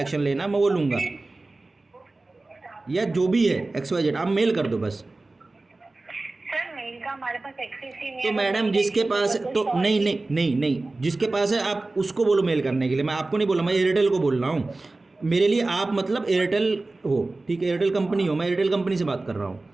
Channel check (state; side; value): quieter; left; 3.2 dB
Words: लेना मैं वो लूँगा, या जो भी है XYZ। आप मेल कर दो बस। हमारे पास एक्सेस ही नहीं तो है। मैडम जिसके पास, तो नहीं नहीं नहीं नहीं, जिसके पास है आप उसको बोलो मेल करने के लिए। मैं आपको नहीं बोला, मैं एयरटेल को बोल रहा हूँ। मेरे लिए आप मतलब एयरटेल हो, ठीक है, एयरटेल कंपनी हो, मैं एयरटेल कंपनी से बात कर रहा हूँ,